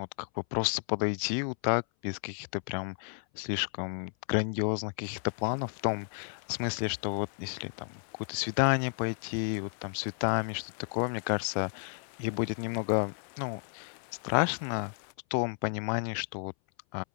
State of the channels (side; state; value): right; silent; 56 dB below the other